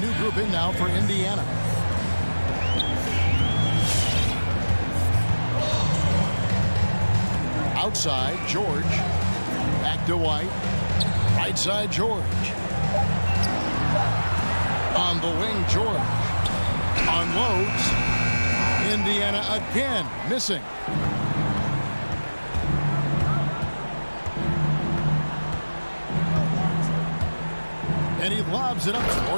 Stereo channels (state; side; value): inverted; both; correlation -1.00